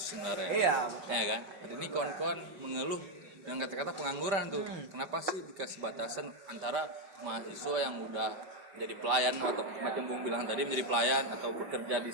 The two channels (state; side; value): late; left; 5.1 ms